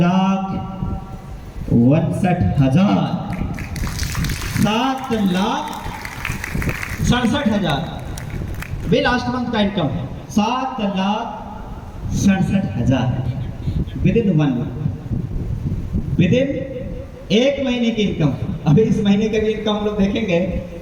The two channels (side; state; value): both; identical; correlation 1.00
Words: 7,67,000 भी लास्ट मंथ का इनकम है। 7,62,000 67,000 with in 1 month, with in 1 महीने की इनकम। अभी इस महीने का भी इनकम हम लोग देखेंगे